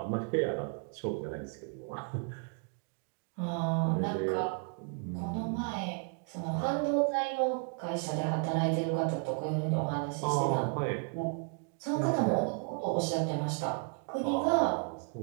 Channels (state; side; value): quieter; left; 39.6 dB